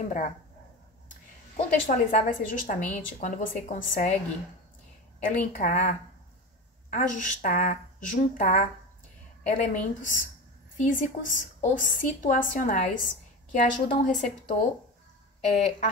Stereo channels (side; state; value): both; normal; correlation 0.26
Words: Contextualizar vai ser justamente quando você consegue elencar, ajustar, juntar elementos físicos ou situacionais que ajudam o receptor a